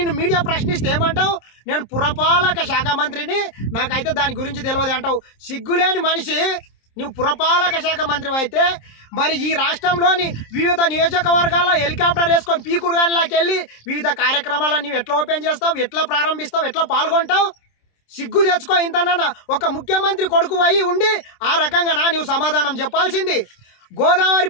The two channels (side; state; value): right; late; 26 ms